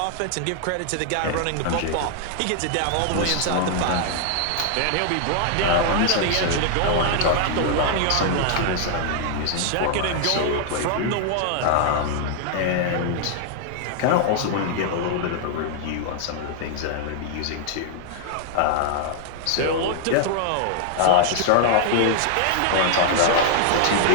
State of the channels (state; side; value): different; both; correlation 0.00